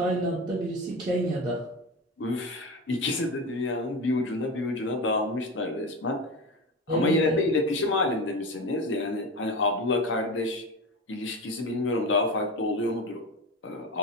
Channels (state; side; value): normal; both; correlation 0.24